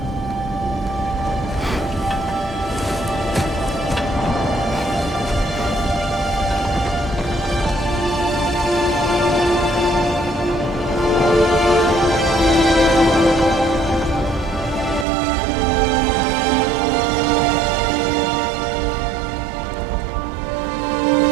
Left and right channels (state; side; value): drops out; left; at 15.1 s